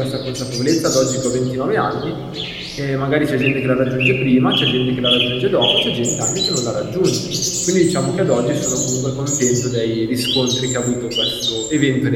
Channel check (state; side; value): identical; both; correlation 1.00